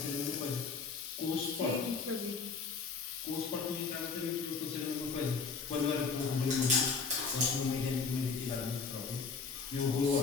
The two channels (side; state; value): right; quieter; 5.1 dB